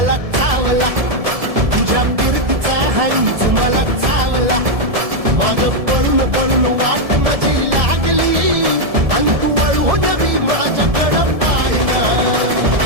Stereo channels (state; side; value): late; left; 1.7 ms